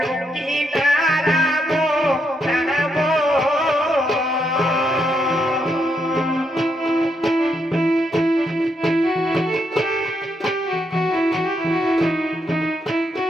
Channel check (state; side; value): normal; both; correlation 0.79